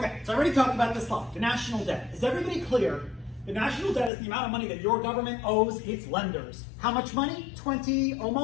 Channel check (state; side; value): drops out; right; at 4.1 s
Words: so I already talked about this slide, the national debt. Is everybody clear? The national debt is the amount of money that your government owes its lenders. How much money?